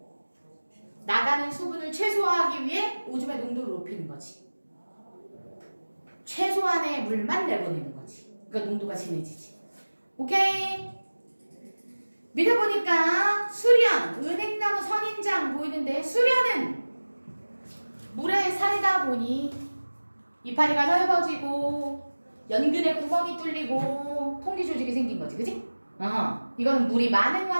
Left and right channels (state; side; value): inverted; both; correlation -1.00